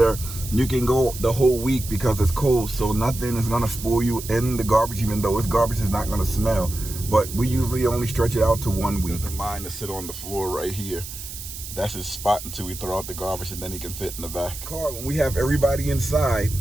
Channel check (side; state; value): right; noise; hiss, 10 dB below the sound